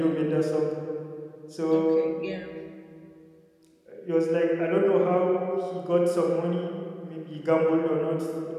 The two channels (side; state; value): both; identical; correlation 1.00